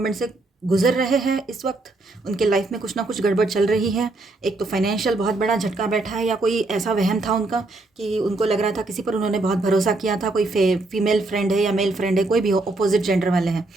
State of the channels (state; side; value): quieter; left; 3.1 dB